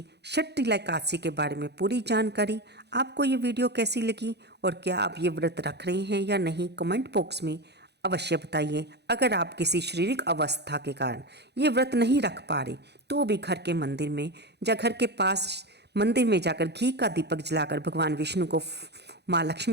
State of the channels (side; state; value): left; late; 0.49 ms